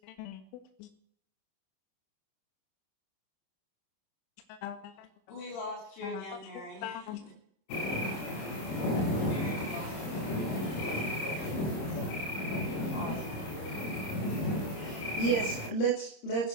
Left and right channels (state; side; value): late; right; 26 ms